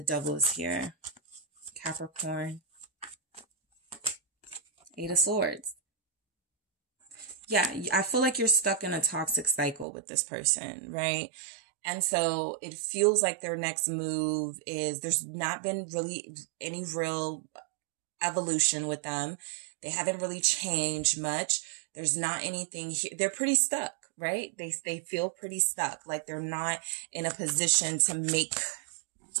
Devil is here. Capricorn. Eight of Swords. Yeah, I feel like you're stuck in a toxic cycle with this person, right? And so it feels like their next move is, there's not been really any real evolution with them. They haven't really changed much. There's not anything here. They're pretty stuck, right? They feel pretty stuck. Like they're not in a position to make,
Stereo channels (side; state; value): left; drops out; at 9.9 s